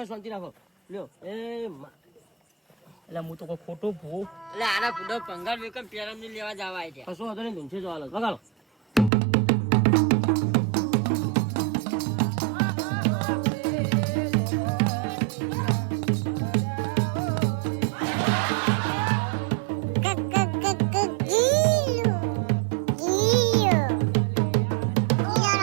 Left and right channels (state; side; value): drops out; left; at 9.1 s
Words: શાંતિ રાખો. લ્યો એ એટલે હું તો કોઈ ખોટું ભૂ. અલે આના બુડો પંગાર વેકમ પેરમ ની લેવા જવા આય છે. કશું વાંધો નહીં તુંસે જવા લો. વગાડો.